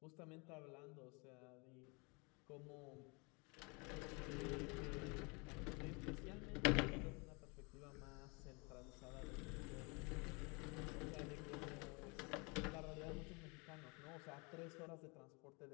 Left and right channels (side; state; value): right; quieter; 30.1 dB